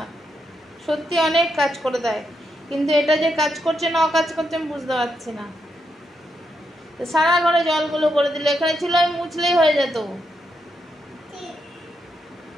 সত্যি অনেক কাজ করে দেয়। কিন্তু এটা যে কাজ করছে না অকাজ করছে আমি বুঝতে পারছি না। তো সারা ঘরে জলগুলো করে দিলে, এখানে ছিল আমি মুছলেই হয়ে যেত।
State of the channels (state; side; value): normal; both; correlation 0.82